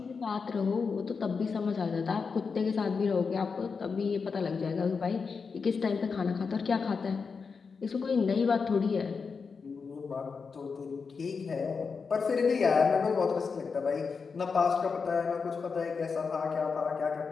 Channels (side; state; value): right; quieter; 5.2 dB